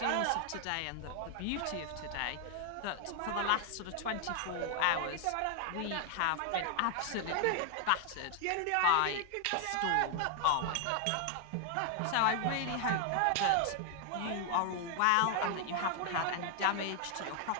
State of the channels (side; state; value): both; different; correlation 0.00